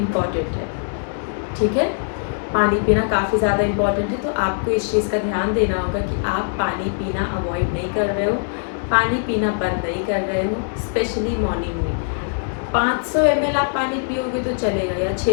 है। ठीक है, पानी पीना काफ़ी ज़्यादा इम्पॉर्टेंट है, तो आपको इस चीज़ का ध्यान देना होगा कि आप पानी पीना अवॉइड नहीं कर रहे हो, पानी पीना बंद नहीं कर रहे हो। स्पेशली मॉर्निंग में 500 ml आप पानी पियोगे तो चलेगा, या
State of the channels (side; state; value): right; silent; digital silence